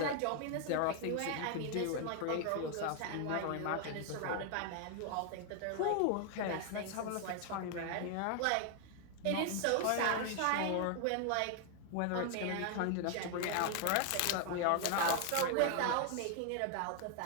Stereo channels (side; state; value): both; different; correlation 0.00